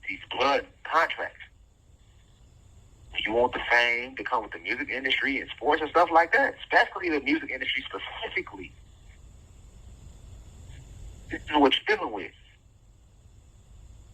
blood contracts. When you want the fame to come with the music industry and sports and stuff like that, especially the music industry specifically, this is what you're dealing with.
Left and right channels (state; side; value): identical; both; correlation 1.00